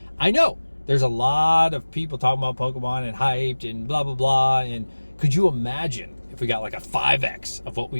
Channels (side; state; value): both; inverted; correlation -1.00